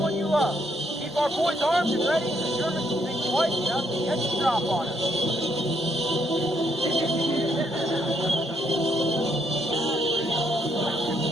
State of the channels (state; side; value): normal; both; correlation 0.74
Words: you love. Keep our boys armed and ready, and the Germans will think twice enough to get the drop on us.